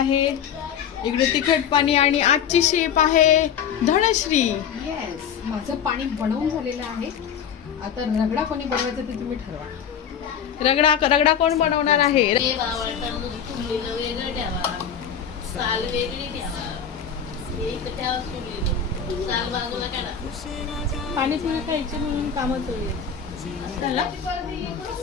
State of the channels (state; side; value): quieter; right; 7.9 dB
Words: इकडे तिखट पाणी आणि आजची शेप आहे धनश्री. येस, माझं पाणी बनवून झालेलं आहे. आता रगडा कोणी बनवायचं ते तुम्ही ठरवा. रगडा कोण बनवणार आहे? पाणीपुरी खायची म्हणून कामं चालू आहेत. चला